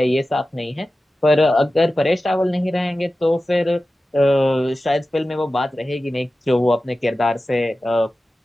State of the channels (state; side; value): normal; both; correlation 0.95